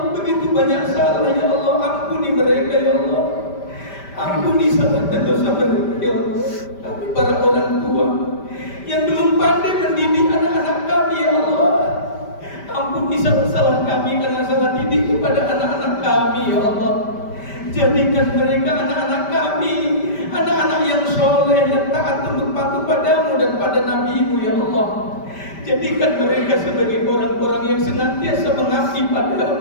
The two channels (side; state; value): right; late; 5.1 ms